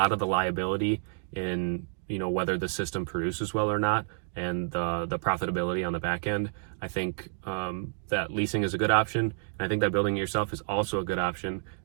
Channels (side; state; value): left; silent; digital silence